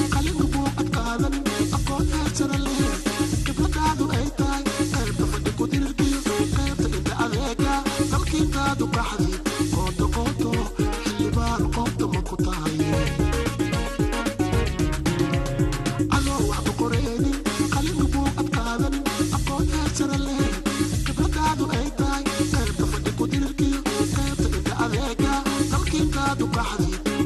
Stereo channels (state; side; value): identical; both; correlation 1.00